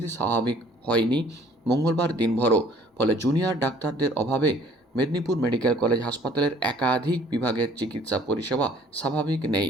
স্বাভাবিক হয়নি মঙ্গলবার দিনভরও। ফলে জুনিয়র ডাক্তারদের অভাবে মেদিনীপুর মেডিকেল কলেজ হাসপাতালের একাধিক বিভাগের চিকিৎসা পরিষেবা স্বাভাবিক নেই।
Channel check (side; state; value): both; normal; correlation 0.56